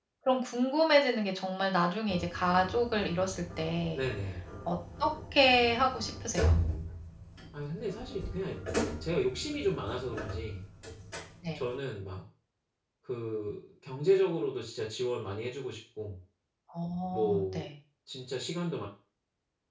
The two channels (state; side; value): identical; both; correlation 1.00